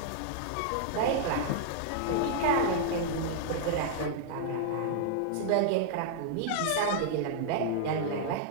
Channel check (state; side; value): different; both; correlation -0.01